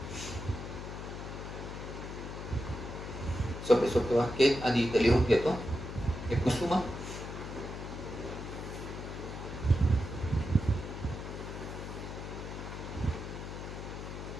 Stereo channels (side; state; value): left; noise; hum, 8 dB below the sound